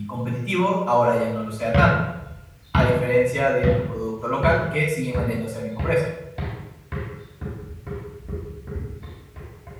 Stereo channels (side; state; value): both; identical; correlation 1.00